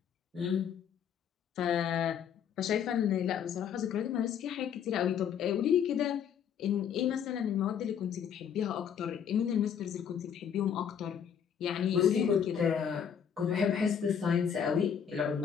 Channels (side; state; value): right; quieter; 8.0 dB